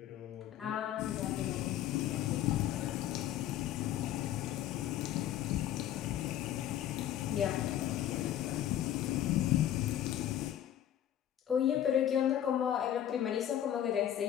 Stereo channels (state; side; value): quieter; right; 11.3 dB